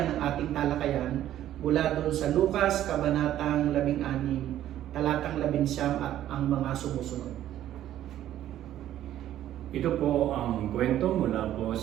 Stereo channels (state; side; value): quieter; left; 12.3 dB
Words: ng ating talakayan mula doon sa Lucas, Kabanatang 16, Talatang 19 at ang mga sumusunod. Ito po ang kwento mula po